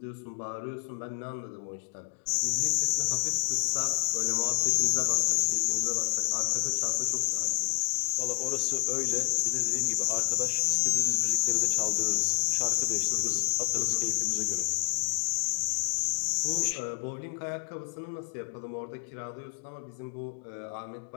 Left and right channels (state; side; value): silent; right; digital silence